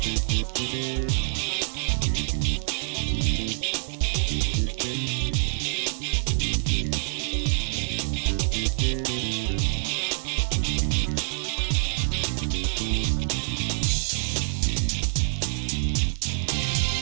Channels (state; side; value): silent; left; digital silence